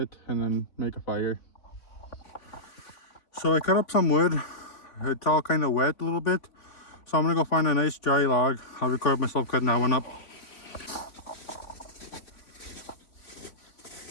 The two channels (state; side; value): late; right; 3.6 ms